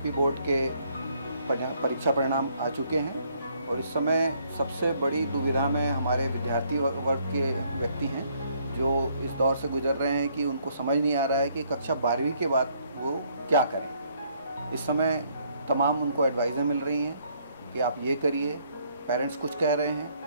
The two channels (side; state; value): both; inverted; correlation -0.67